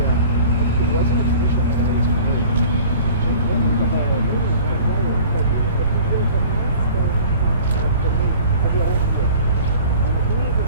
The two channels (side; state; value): both; inverted; correlation -0.45